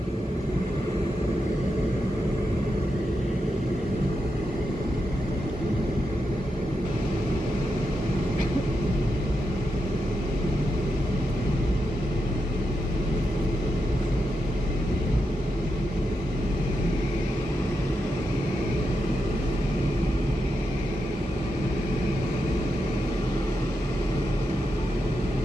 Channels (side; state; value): both; normal; correlation 0.86